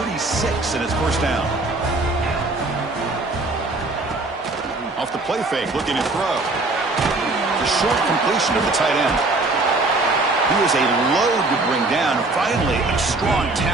36, and it's first down. Off the play fake, looking to throw. The short completion of the tight end. He was a load to bring down. Finally, a strong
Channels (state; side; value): quieter; left; 3.1 dB